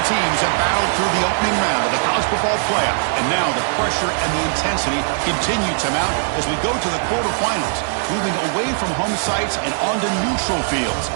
teams have battled through the opening round of the college football playoff, and now the pressure and the intensity continue to mount as we go to the quarterfinals, moving away from home sites and onto neutral fields.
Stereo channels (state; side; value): silent; left; 57 dB below the other